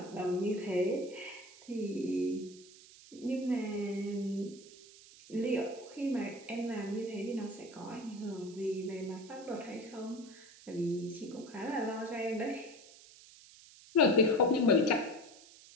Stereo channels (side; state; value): right; noise; hiss, 20 dB below the sound